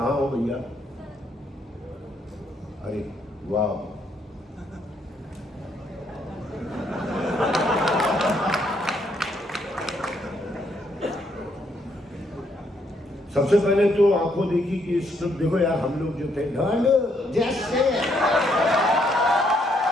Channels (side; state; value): both; normal; correlation 0.72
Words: हो भैया? अरे वाह, सबसे पहले तो आंखों देखी कि स्क्रिप्ट देखो यार, हम लोग जो थे ढंड जैसे